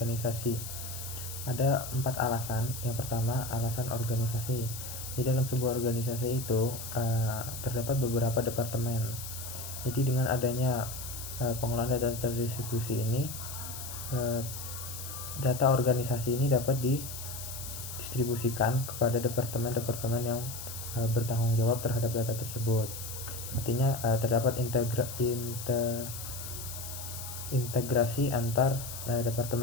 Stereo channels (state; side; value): noise; left; hiss, 9 dB below the sound